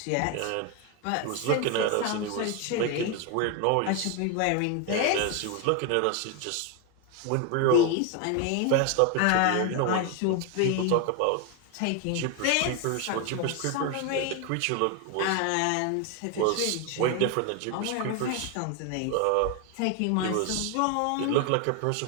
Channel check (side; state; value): both; different; correlation 0.01